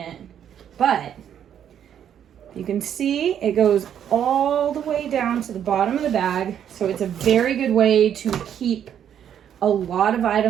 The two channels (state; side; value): quieter; left; 9.4 dB